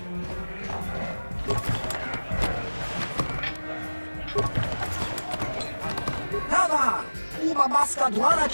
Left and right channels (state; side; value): inverted; both; correlation -1.00